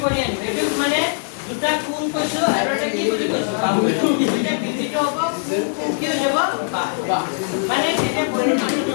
কৰি আনিব এইটো মানে দুটা কোণ কৈছো আৰু এটা কি বুলি কৈছো বাহু এটা বিধিটো হ'ব কি হৈ যাব মানে এটা পৰিমাণ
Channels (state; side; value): silent; right; 65 dB below the other